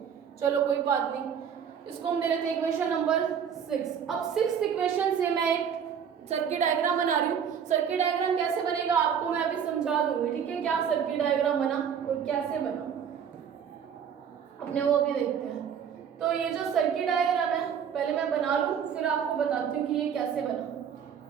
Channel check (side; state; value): left; quieter; 7.8 dB